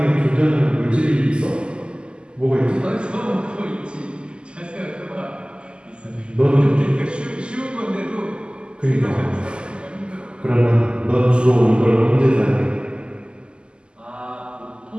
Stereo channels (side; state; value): left; late; 0.050 ms